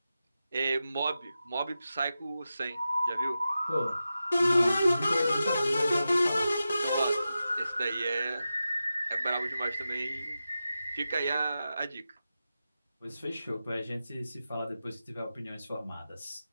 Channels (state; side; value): inverted; both; correlation -0.92